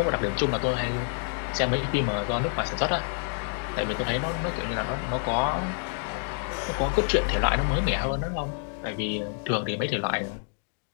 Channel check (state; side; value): silent; right; 60 dB below the other